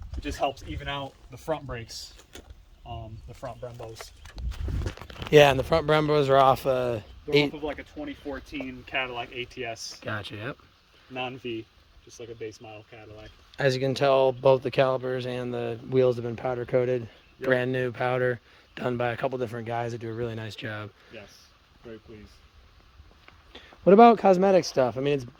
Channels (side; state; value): both; identical; correlation 1.00